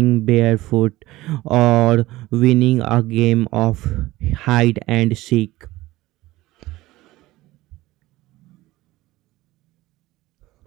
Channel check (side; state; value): left; quieter; 18.0 dB